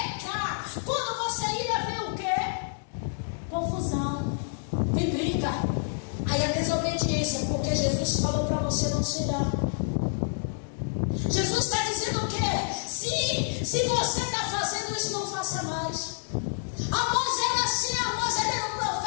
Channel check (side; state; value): right; silent; digital silence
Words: Quando você ira, vem o quê? Confusão. Vem briga. Aí a desobediência, porque Jesus falou para você não se irar. Jesus está dizendo o quê? Se você está fazendo isso, não faça mais. Amós era assim, Amós ele era um